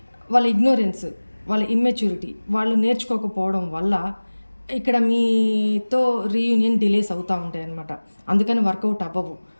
వాళ్ళ ఇగ్నోరెన్స్, వాళ్ళ ఇమ్మెచ్యూరిటీ, వాళ్ళు నేర్చుకోకపోవడం వల్ల ఇక్కడ మీతో రీయూనియన్ డిలేస్ అవుతూ ఉంటాయి అన్నమాట. అందుకని వర్కౌట్ అవ్వవు.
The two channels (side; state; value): both; inverted; correlation -1.00